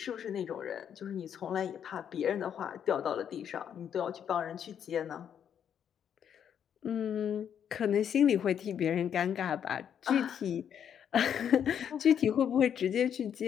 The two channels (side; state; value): right; quieter; 8.7 dB